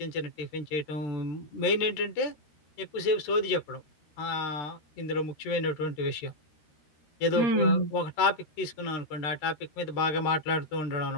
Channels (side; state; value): right; late; 13 ms